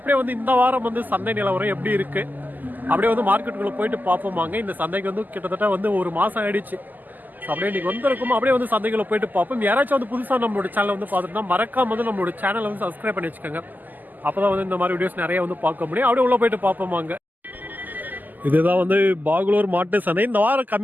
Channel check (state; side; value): late; left; 0.085 ms